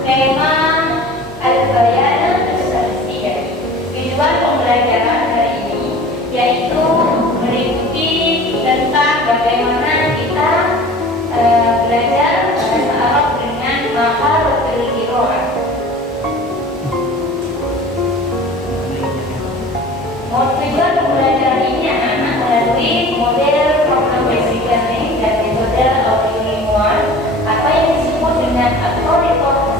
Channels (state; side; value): normal; both; correlation 0.42